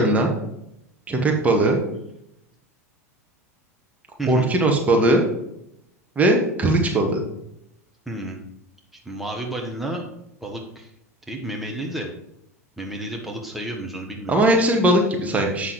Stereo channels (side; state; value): both; normal; correlation 0.39